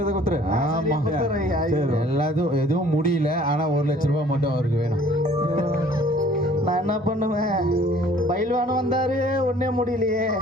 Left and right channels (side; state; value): both; normal; correlation 0.54